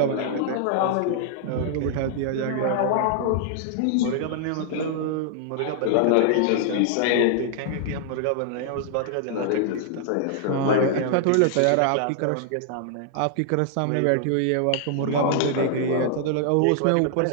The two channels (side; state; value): both; different; correlation -0.01